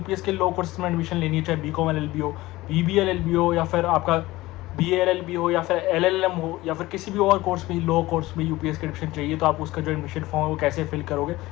के लो कोर्सेज में एडमिशन लेनी है, चाहे बीकॉम एलएलबी हो, बीबीए एलएलबी हो, या फिर आपका बीए एलएलबी हो, या फिर एलएलएम हो, या फिर किसी भी और कोर्स में लो कोर्स में यूपीएस के एडमिशन चाहिए, तो आप उसका जो एडमिशन फॉर्म है वो कैसे फिल करोगे,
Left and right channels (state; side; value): quieter; right; 18.5 dB